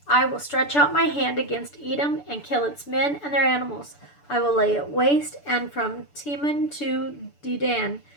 I will stretch out my hand against Edom and kill its men and their animals. I will lay it waste, and from Teman to Dedan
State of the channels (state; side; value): late; right; 6.9 ms